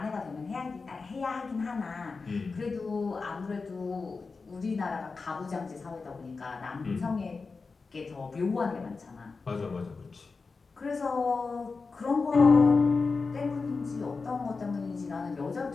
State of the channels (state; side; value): quieter; right; 4.4 dB